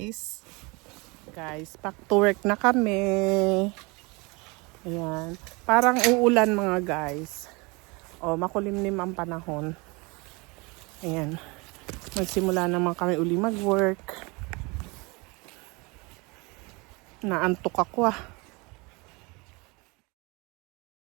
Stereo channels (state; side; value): quieter; left; 27.2 dB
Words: Guys, back to work na kami. Ayan. Parang uulan mga guys. O, makulimlim ang panahon. Ayan. Magsimula naman kami uli mag-work. Naantok ako ah.